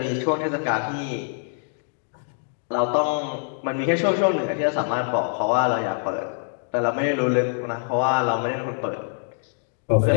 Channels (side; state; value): right; silent; digital silence